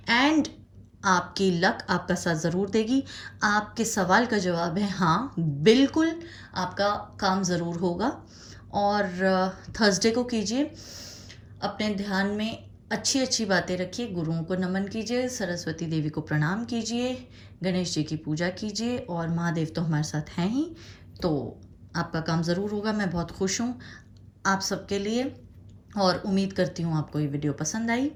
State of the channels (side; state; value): both; identical; correlation 1.00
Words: एंड आपकी लक आपका साथ ज़रूर देगी। आपके सवाल का जवाब है हाँ, बिल्कुल आपका काम ज़रूर होगा। और थर्सडे को कीजिए, अपने ध्यान में अच्छी अच्छी बातें रखिए, गुरुओं को नमन कीजिए, सरस्वती देवी को प्रणाम कीजिए, गणेश जी की पूजा कीजिए, और महादेव तो हमारे साथ हैं ही, तो आपका काम ज़रूर होगा। मैं बहुत खुश हूँ आप सबके लिए, और उम्मीद करती हूँ आपको ये वीडियो पसंद आई।